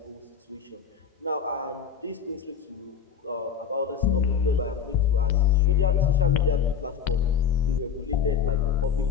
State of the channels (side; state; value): right; quieter; 7.6 dB